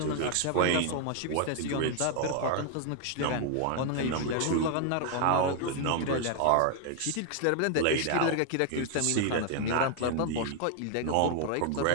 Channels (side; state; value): both; different; correlation 0.00